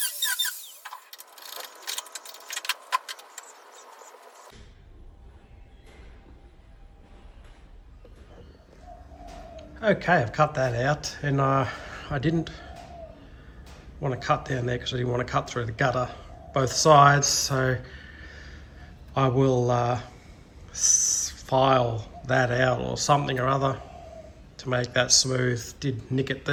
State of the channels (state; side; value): identical; both; correlation 1.00